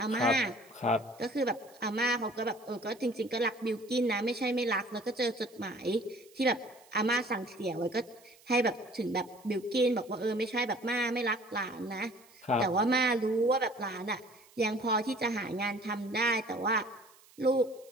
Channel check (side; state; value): right; noise; hiss, 27 dB below the sound